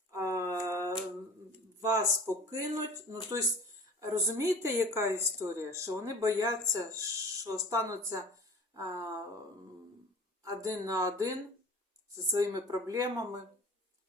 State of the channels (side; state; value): both; normal; correlation 0.42